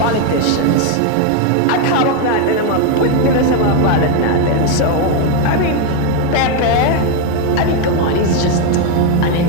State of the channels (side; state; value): both; different; correlation 0.02